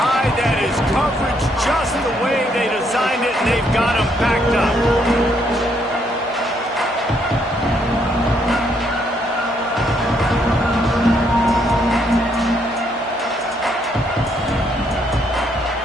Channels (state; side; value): normal; both; correlation 0.72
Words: That is coverage just the way they designed it, and they've got him backed up.